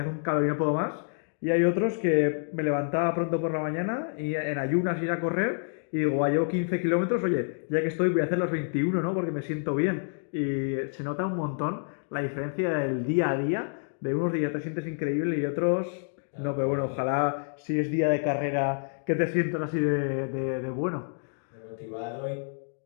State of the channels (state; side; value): silent; right; digital silence